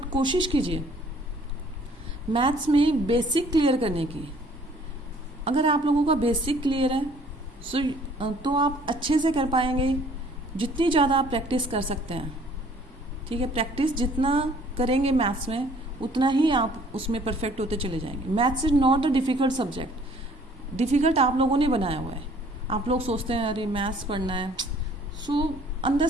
कोशिश कीजिए मैथ्स में बेसिक क्लियर करने की। अगर आप लोगों का बेसिक क्लियर है तो आप अच्छे से कर पाएंगे, जितनी ज़्यादा आप प्रैक्टिस कर सकते हैं। ठीक है, प्रैक्टिस जितना करेंगे मैथ्स में उतना ही आप उसमें परफेक्ट होते चले जाएंगे। Maths is not the difficult subject, difficult आप लोगों ने बनाया हुआ है। आप लोग सोचते हैं अरे मैथ्स पढ़ना है, सो अंदर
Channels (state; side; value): normal; both; correlation 0.57